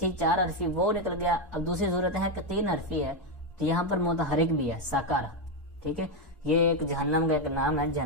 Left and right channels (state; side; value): normal; both; correlation 0.06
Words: 4 حرفی وہ نکل گیا. اب دوسری صورت ہے کہ 3 حرفی ہے تو یہاں پر متحرک بھی ہے ساکارا. ٹھیک ہے, یہ ایک جہنم کا ایک نام ہے,